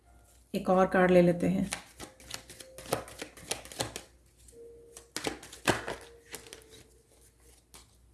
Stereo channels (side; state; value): both; identical; correlation 1.00